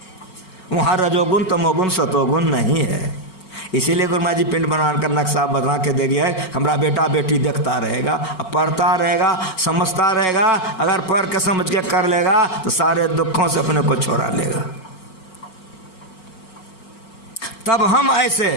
वहाँ रजोगुण तमोगुण सतोगुण नहीं है। इसीलिए गुरु महाराज जी पिंड बनाकर नक्शा बना के दे गया है। हमारा बेटा बेटी देखता रहेगा, पढ़ता रहेगा, समझता रहेगा। अगर पढ़ के समझ के कर लेगा तो सारे दुखों से अपने को छोड़ा लेगा। तब हम ऐसे,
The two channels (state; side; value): late; right; 5.4 ms